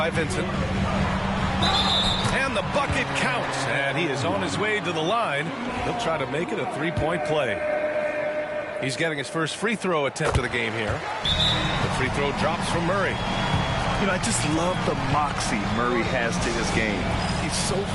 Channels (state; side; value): identical; both; correlation 1.00